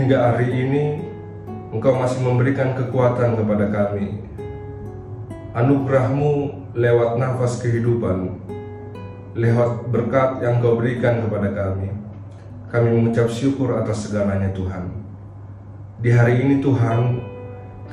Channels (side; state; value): both; identical; correlation 1.00